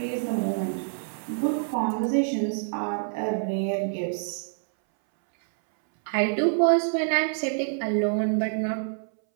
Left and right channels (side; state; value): left; silent; 61 dB below the other